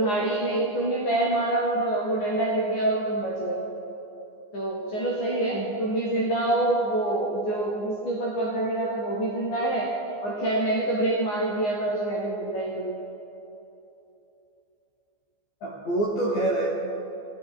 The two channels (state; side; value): late; right; 14 ms